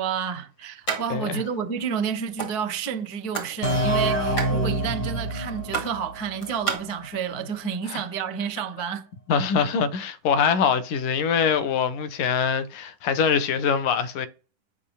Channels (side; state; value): right; late; 10 ms